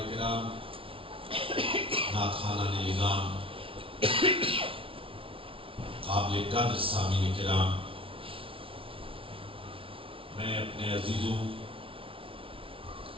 کرام، نعت خوانان نظام، قابل قدر سامعین کرام، میں اپنے عزیزوں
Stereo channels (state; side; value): late; left; 0.26 ms